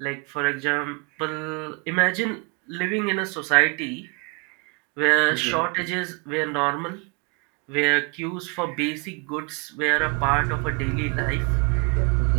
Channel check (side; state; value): left; quieter; 32.8 dB